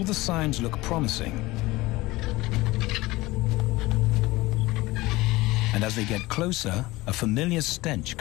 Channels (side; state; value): right; quieter; 20.1 dB